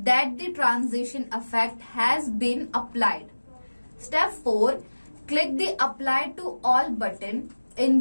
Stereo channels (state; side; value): inverted; both; correlation -1.00